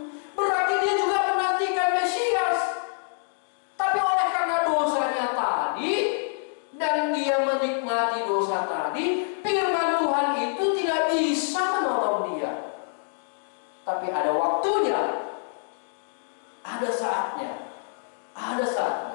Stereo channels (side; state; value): right; silent; digital silence